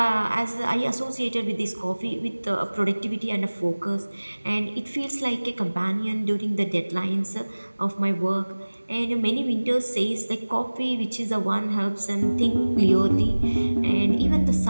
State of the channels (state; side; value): inverted; both; correlation -1.00